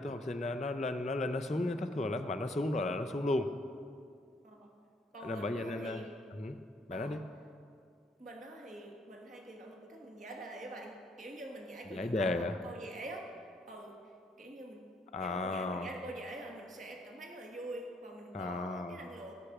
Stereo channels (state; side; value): normal; both; correlation 0.69